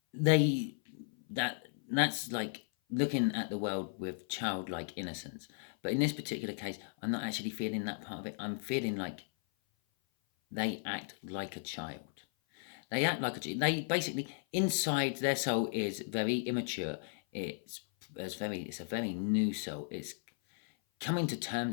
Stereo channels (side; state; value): right; silent; 54 dB below the other